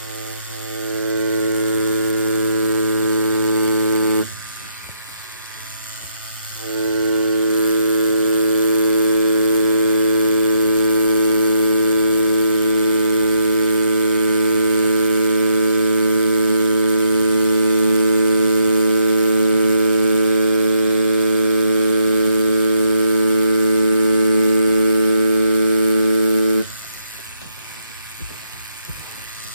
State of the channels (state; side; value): inverted; both; correlation -0.76